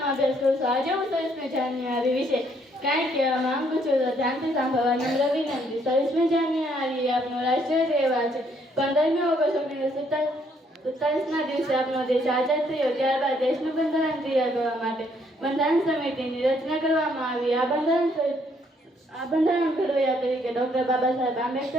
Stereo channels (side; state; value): both; normal; correlation 0.69